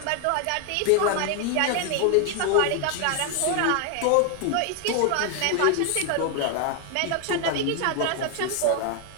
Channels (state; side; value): different; both; correlation 0.00